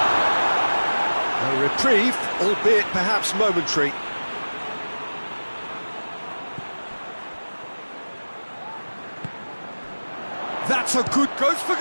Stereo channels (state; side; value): inverted; both; correlation -1.00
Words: A reprieve, albeit perhaps momentary. That's a good goes for